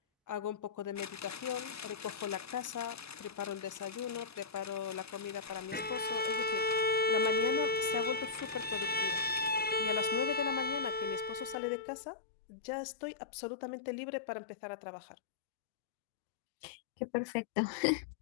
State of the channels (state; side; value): drops out; right; at 11.6 s